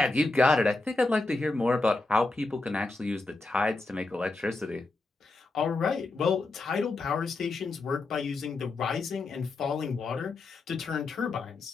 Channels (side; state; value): right; quieter; 3.3 dB